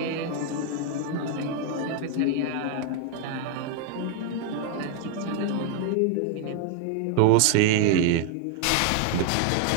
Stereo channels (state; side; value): different; both; correlation 0.00